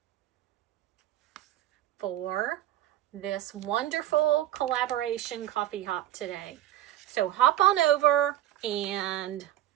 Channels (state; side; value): quieter; left; 13.4 dB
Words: for this wonderful collaboration coffee hop today. So hop on over and